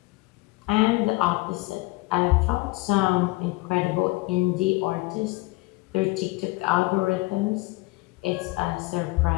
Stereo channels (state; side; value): quieter; right; 22.5 dB